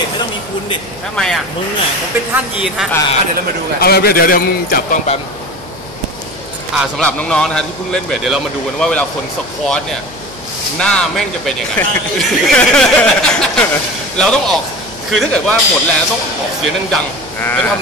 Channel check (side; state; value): left; noise; hum, 20 dB below the sound